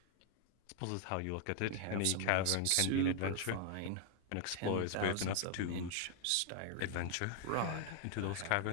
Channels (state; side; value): different; both; correlation 0.00